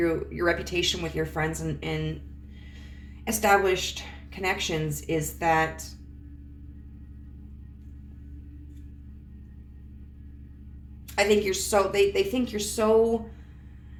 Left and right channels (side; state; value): both; identical; correlation 1.00